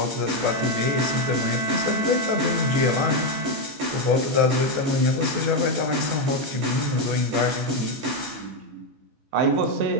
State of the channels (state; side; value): late; left; 15 ms